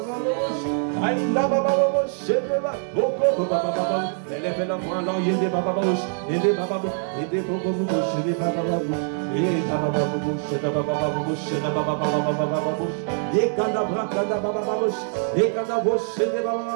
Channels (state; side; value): silent; left; 59 dB below the other